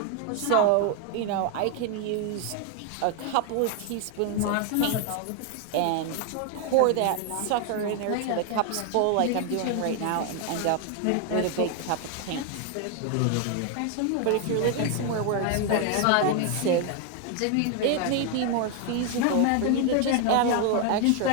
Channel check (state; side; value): different; both; correlation 0.01